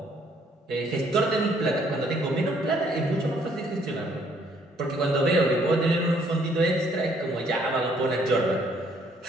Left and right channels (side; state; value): both; normal; correlation 0.65